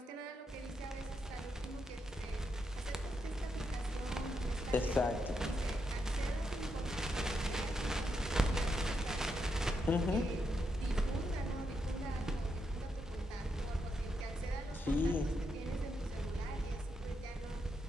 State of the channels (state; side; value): normal; both; correlation 0.82